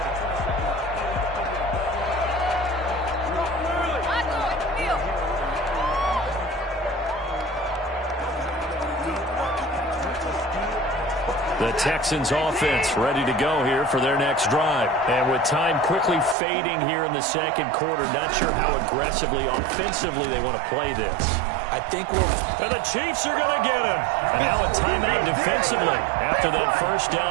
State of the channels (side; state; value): left; drops out; at 16.4 s